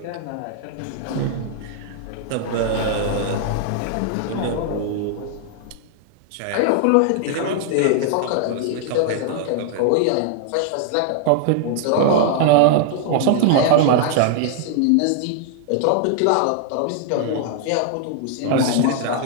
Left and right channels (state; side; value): different; both; correlation -0.01